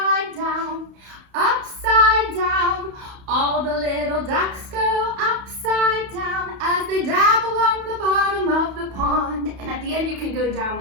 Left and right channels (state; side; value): late; left; 31 ms